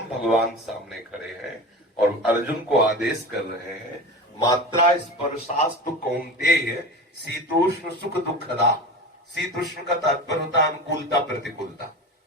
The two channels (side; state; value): both; normal; correlation 0.31